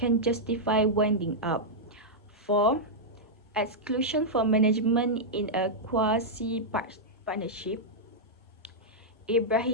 justify winding up. 4. Exclusion for management in a quasi-partnership,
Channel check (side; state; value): both; normal; correlation -0.07